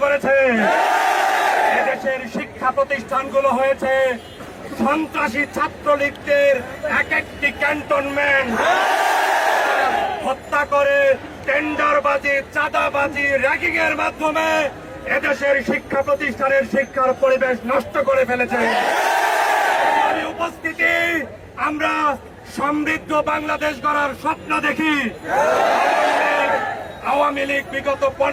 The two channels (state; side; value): identical; both; correlation 1.00